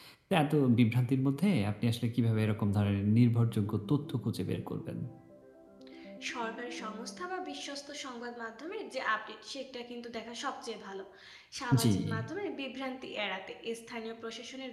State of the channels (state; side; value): identical; both; correlation 1.00